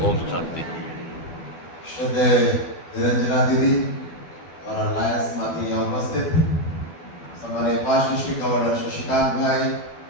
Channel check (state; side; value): late; right; 12 ms